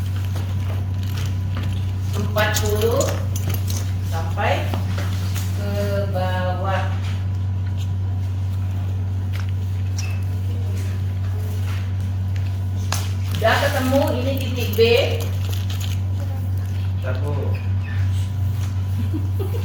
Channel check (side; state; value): both; identical; correlation 1.00